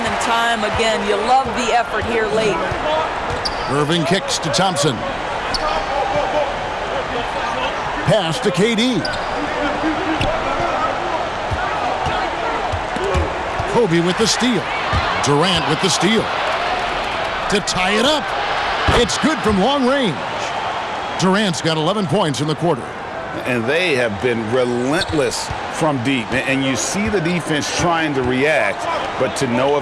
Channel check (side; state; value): both; identical; correlation 1.00